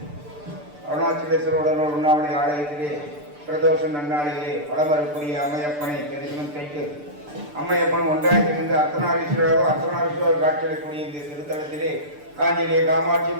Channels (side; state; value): left; late; 6.8 ms